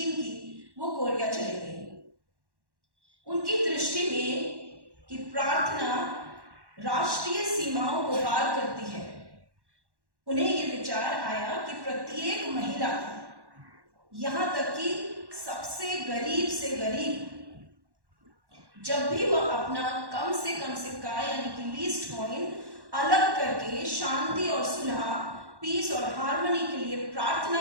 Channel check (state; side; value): late; left; 1.1 ms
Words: की, वो कोरिया चली गई। उनकी दृष्टि में कि प्रार्थना राष्ट्रीय सीमाओं को पार करती है, उन्हें ये विचार आया कि प्रत्येक महिला, यहाँ तक कि सबसे गरीब से गरीब, जब भी वह अपना कम से कम सिक्का यानी कि लीस्ट कॉइन अलग करके शांति और सुलह, पीस और हार्मनी के लिए प्रार्थना